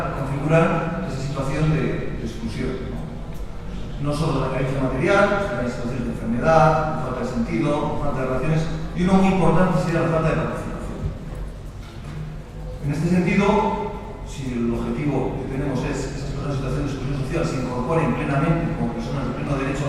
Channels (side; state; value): both; identical; correlation 1.00